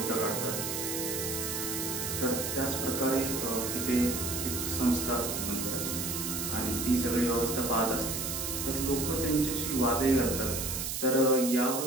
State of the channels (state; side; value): noise; right; hiss, 3 dB below the sound